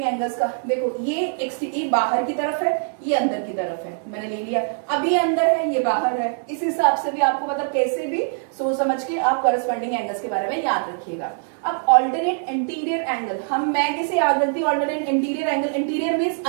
एंगल्स का। देखो ये बाहर की तरफ है, ये अंदर की तरफ है, मैंने ले लिया। अब ये अंदर है, ये बाहर है, इस हिसाब से भी आपको मतलब कैसे भी सोच समझ के आप कॉरेस्पॉन्डिंग एंगल्स के बारे में याद रखिएगा। अब ऑल्टरनेट एंटीरियर एंगल, मैं कैसे याद रखती हूँ alternate anterior angle, anterior means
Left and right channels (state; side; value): silent; left; digital silence